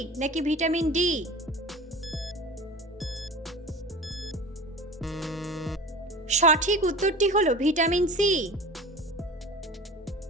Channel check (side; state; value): both; normal; correlation 0.36